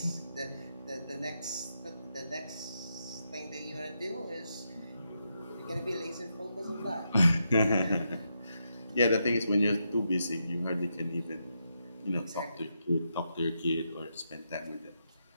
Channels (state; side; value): inverted; both; correlation -0.83